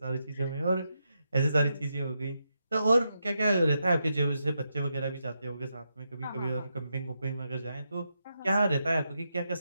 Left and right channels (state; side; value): inverted; both; correlation -0.84